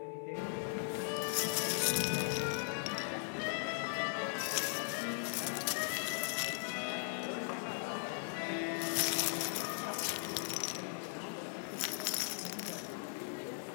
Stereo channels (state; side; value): silent; right; 52 dB below the other